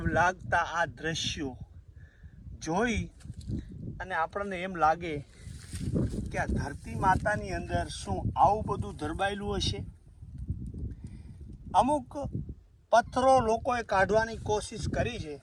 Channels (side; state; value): both; identical; correlation 1.00